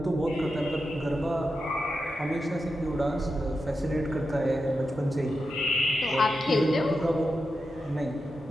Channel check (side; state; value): both; normal; correlation 0.89